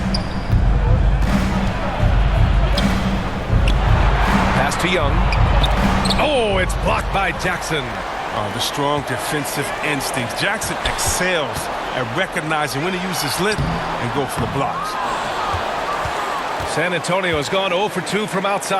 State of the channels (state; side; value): identical; both; correlation 1.00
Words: Pass to Young. Oh, it's blocked by Jackson. The strong defensive instincts. Jackson excels at recognizing when to use his length and go for the blocks. San Antonio has gone 0 for 2 from